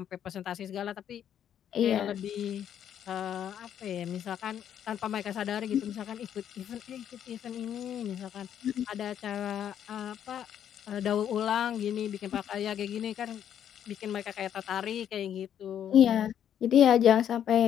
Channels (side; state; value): right; quieter; 9.6 dB